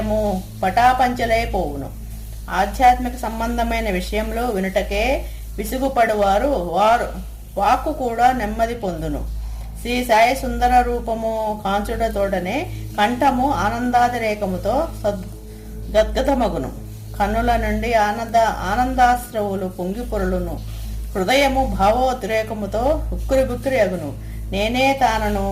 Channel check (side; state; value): both; identical; correlation 1.00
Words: పటాపంచలైపోవును. ఆధ్యాత్మిక సంబంధమైన విషయంలో వినుటకే విసుగుపడువారు వాక్కు కూడా నెమ్మది పొందును. శ్రీ సాయి సుందర రూపము కాంచుడతోడనే కంఠము ఆనందాతిరేకముతో గద్గదమగును. కన్నుల నుండి ఆనందాశ్రవులు పొంగి పొరులును. హృదయము భావోద్రేకముతో ఉక్కిరి అగును. నేనే తానను